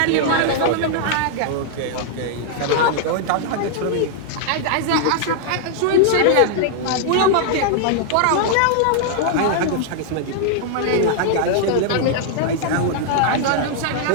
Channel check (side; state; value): both; different; correlation -0.01